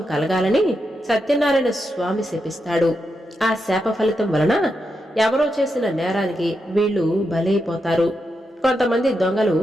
కలగాలని సత్యనారాయణ స్వామి శపిస్తాడు. ఆ శాప ఫలితం వలన ఎవరో చేసిన నేరానికి వీళ్లు బలైపోతారు. కొంతమంది దొంగలు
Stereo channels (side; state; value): both; normal; correlation 0.85